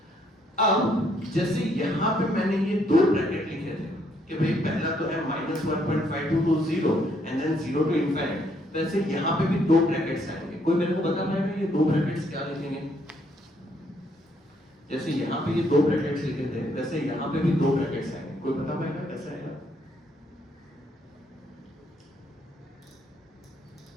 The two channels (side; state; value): both; normal; correlation 0.70